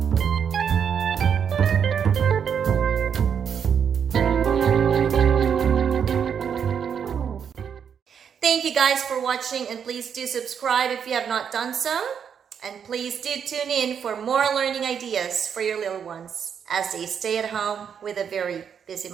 Thank you guys for watching, and please do subscribe if you have not done so. And please do tune in for more learning ideas for your little ones as they stay at home with a very busy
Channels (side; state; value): left; quieter; 7.5 dB